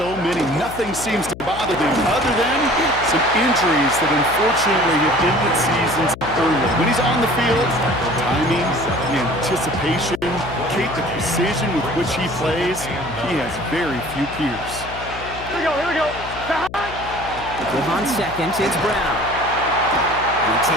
many. Nothing seems to bother them other than some injuries that unfortunately have ended seasons early. When he's on the field, timing, the anticipation, the precision with which he plays, he has very few peers. Here we go. With on second, it's Brown. He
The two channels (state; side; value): noise; left; hum, 14 dB below the sound